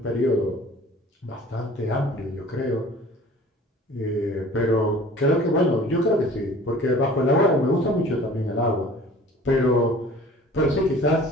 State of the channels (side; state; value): both; normal; correlation 0.46